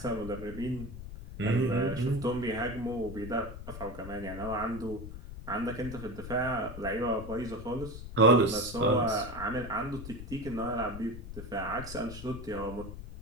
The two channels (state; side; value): noise; left; rumble, 10 dB below the sound